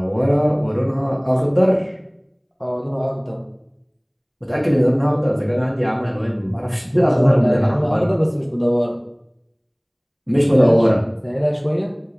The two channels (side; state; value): both; identical; correlation 1.00